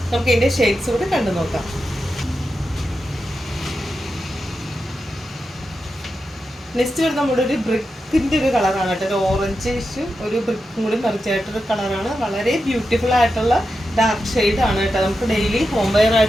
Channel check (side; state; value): both; normal; correlation 0.89